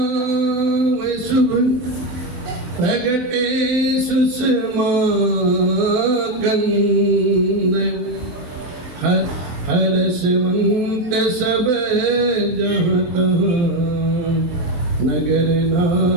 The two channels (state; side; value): late; left; 24 ms